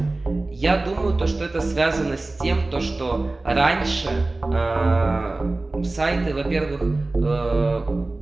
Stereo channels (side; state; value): left; quieter; 3.1 dB